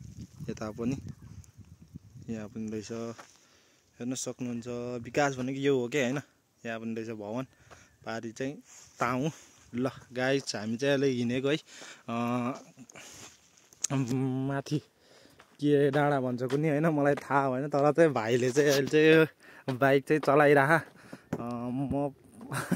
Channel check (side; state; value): both; identical; correlation 1.00